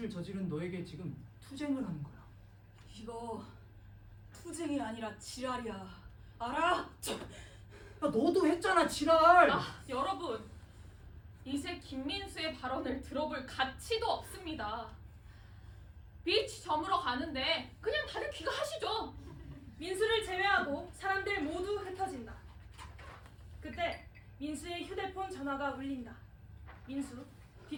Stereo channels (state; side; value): identical; both; correlation 1.00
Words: 저지른 너에게 지금 투쟁을 하는 거야. 이거 투쟁이 아니라 지랄이야. 알아? 야, 너도 했잖아, 지랄. 여러분, 이제 김민수의 발언을 들어볼 가치도 없습니다. 비치 저물어 가는데 그냥 다들 귀가하시죠. 민수를 제외하고 사람들 모두 흩어진다. 그때 민수의 휴대폰 전화가 울린다. 민수,